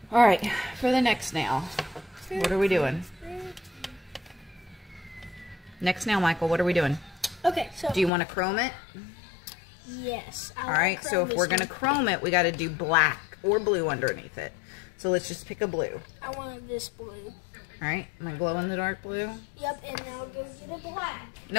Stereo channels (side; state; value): right; drops out; at 8.1 s